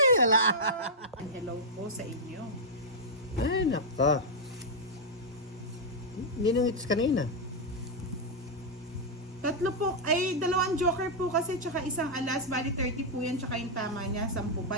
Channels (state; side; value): normal; both; correlation -0.04